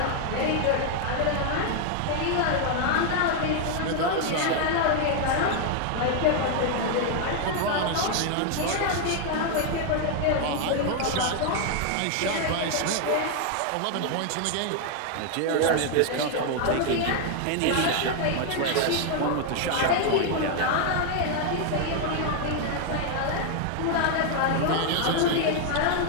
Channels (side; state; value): both; different; correlation 0.00